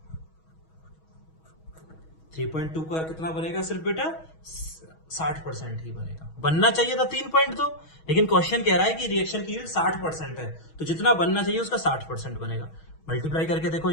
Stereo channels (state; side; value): late; right; 6.3 ms